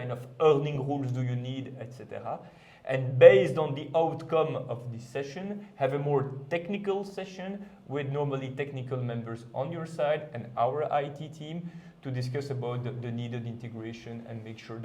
of earning rules do you need, etc. And based on the outcome of this session, have a more technical session with normally technical members on your side and our IT team to discuss about the needed integration and make sure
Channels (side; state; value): both; identical; correlation 1.00